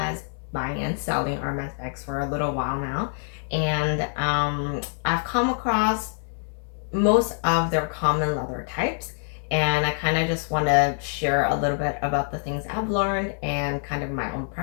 selling Hermes bags for a little while now. And I've come across most of their common leather types. And I kind of just want to share a little bit about the things I've learned and kind of my own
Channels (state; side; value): silent; right; 56 dB below the other